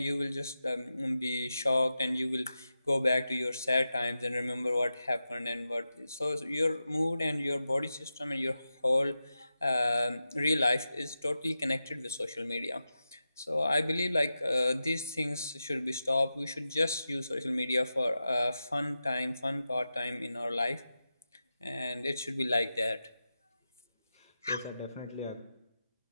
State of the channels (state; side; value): inverted; both; correlation -0.92